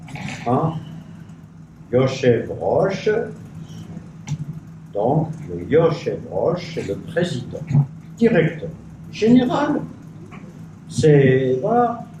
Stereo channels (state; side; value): identical; both; correlation 1.00